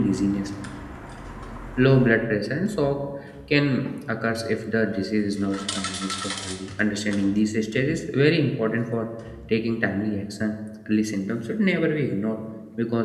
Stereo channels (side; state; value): both; identical; correlation 1.00